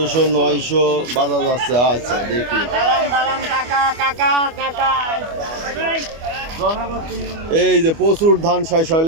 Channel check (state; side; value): late; left; 25 ms